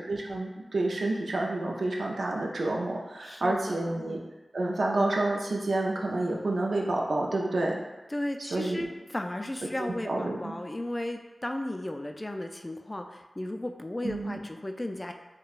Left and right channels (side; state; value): both; normal; correlation 0.96